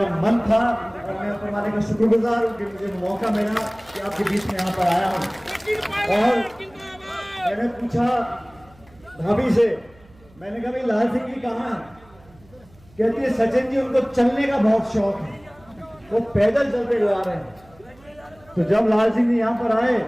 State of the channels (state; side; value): noise; right; hum, 27 dB below the sound